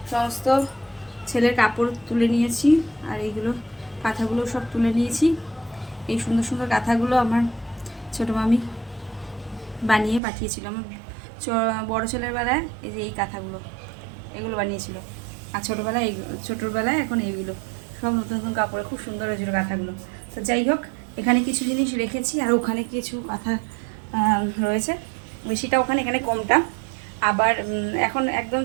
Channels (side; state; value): left; drops out; at 10.2 s